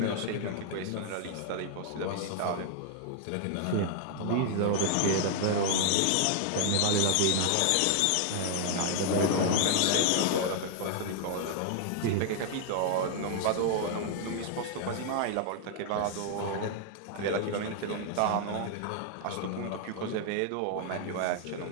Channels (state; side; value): different; both; correlation 0.00